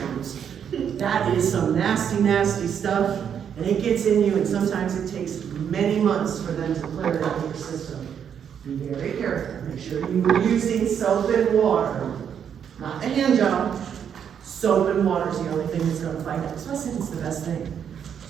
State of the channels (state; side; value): quieter; left; 8.2 dB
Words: That is some nasty, nasty stuff, and it gets in you, and sometimes it takes many months for them to clear it out of your system. Be very careful. Make sure you are using soap and water, not the hand job. Soap and water is the only thing that's going to fight that. So I think it's the best thing.